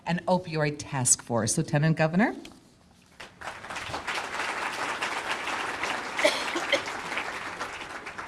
and Opioid Task Force. Lieutenant Governor.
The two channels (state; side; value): identical; both; correlation 1.00